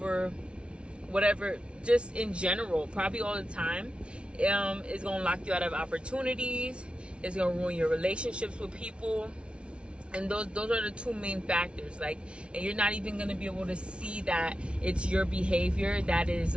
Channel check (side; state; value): left; late; 0.059 ms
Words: whatever, just in general, probably all the time, is going to lock you out of opportunities. It's going to ruin your relationships with people. And those are the two main factors. Like, and you're not even going to be able to see that it's your behavior that is